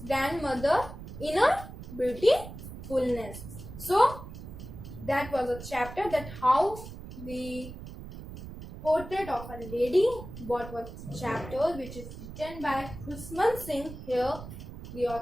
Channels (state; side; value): noise; right; rumble, 12 dB below the sound